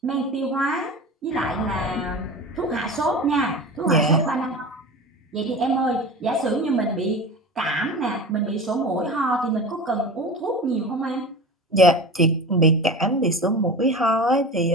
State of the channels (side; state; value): both; normal; correlation 0.31